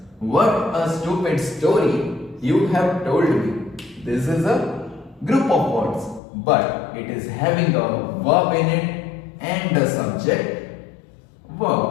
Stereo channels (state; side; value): drops out; right; at 6.2 s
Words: what a stupid story you have told me. This is a group of words, but it is having a verb in it and a subject,